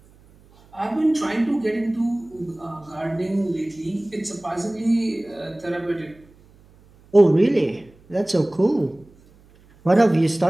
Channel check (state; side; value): noise; right; hum, 28 dB below the sound